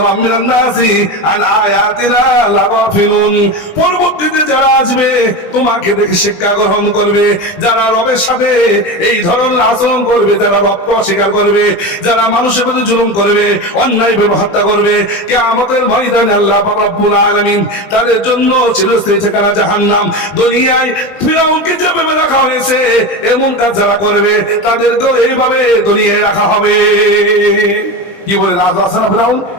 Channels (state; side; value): late; right; 20 ms